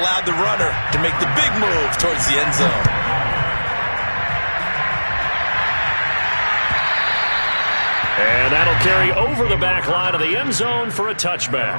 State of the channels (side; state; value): both; inverted; correlation -1.00